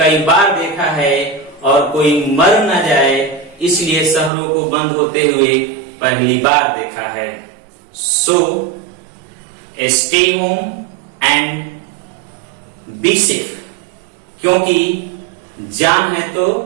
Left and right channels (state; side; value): drops out; left; at 4.3 s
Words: बार देखा है और कोई मर न जाए इसलिए शहरों को बंद होते हुए पहली बार देखा है। So, stay home and be safe, क्योंकि जान है तो